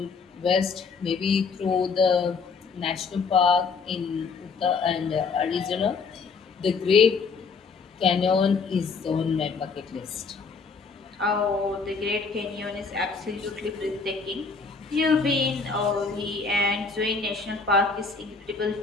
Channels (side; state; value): right; quieter; 4.8 dB